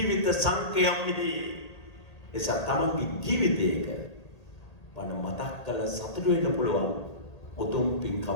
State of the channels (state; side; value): late; right; 1.8 ms